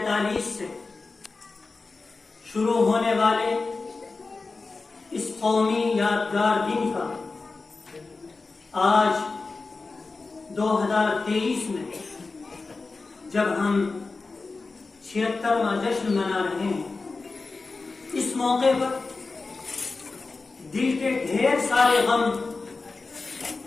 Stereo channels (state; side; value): quieter; right; 3.9 dB